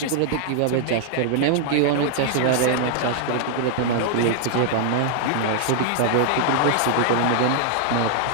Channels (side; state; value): both; different; correlation -0.01